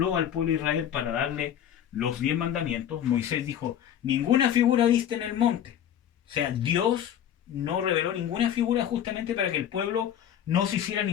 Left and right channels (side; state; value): right; quieter; 10.0 dB